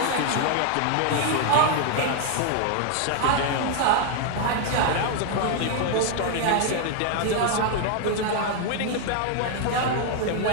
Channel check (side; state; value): both; different; correlation 0.00